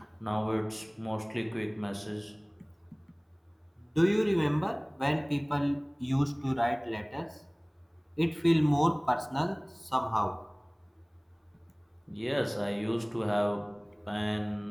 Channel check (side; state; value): both; identical; correlation 1.00